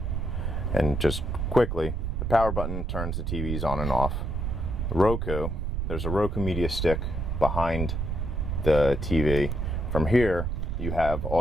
and just quickly, the power button turns the TVs on and off. The Roku, there's a Roku media stick behind the TV. From here, you have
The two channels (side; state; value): right; noise; rumble, 1 dB below the sound